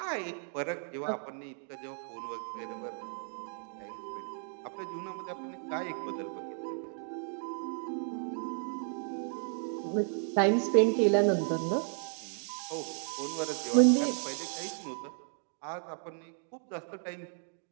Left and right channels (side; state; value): left; silent; 55 dB below the other